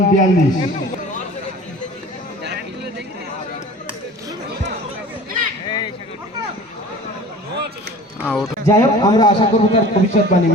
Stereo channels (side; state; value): both; normal; correlation 0.43